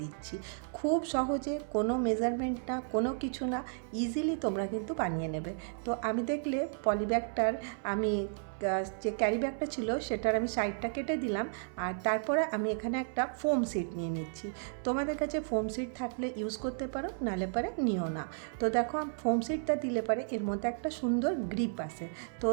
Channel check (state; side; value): silent; left; 56 dB below the other